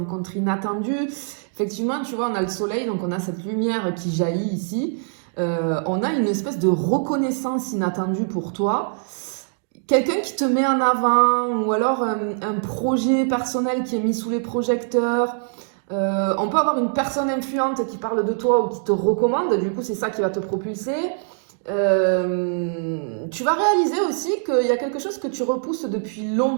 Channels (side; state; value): left; silent; digital silence